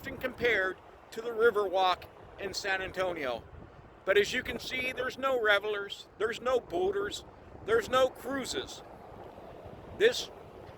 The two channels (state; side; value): identical; both; correlation 1.00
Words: compared to the Riverwalk in San Antonio. But as you can see, there's no revelers, there's no boaters, there's no cruises. This